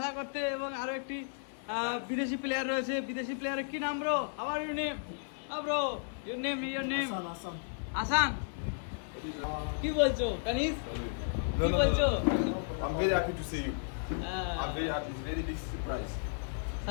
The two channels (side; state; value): right; silent; digital silence